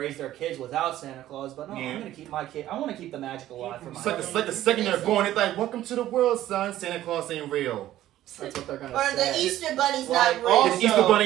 their kids without Santa Claus, but no, Yeah. I'm going to keep my kid. I want to keep the magic alive for my It's like the second they're born, it's like, welcome to the world, son. Santa Claus ain't real. That's what they're going to Or say. the Easter Bunny's Like, not real. also, The Easter Bunny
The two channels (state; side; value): quieter; left; 13.6 dB